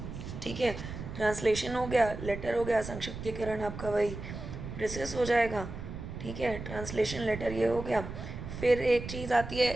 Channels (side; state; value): right; noise; rumble, 9 dB below the sound